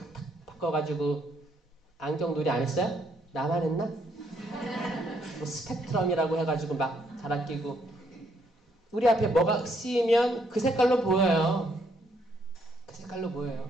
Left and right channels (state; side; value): normal; both; correlation 0.72